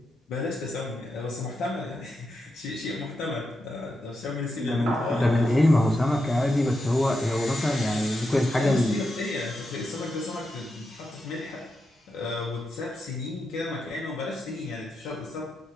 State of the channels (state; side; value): normal; both; correlation 0.86